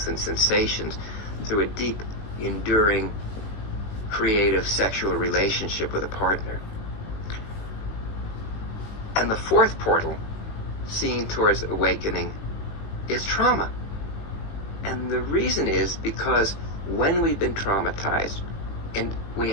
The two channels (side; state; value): right; late; 18 ms